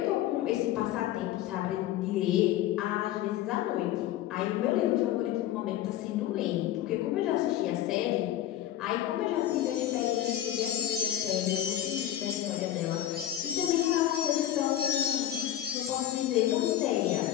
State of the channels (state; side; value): quieter; right; 12.4 dB